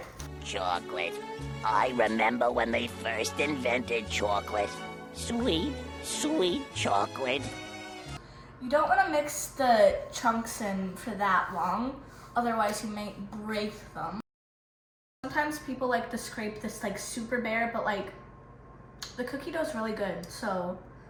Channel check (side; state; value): both; identical; correlation 1.00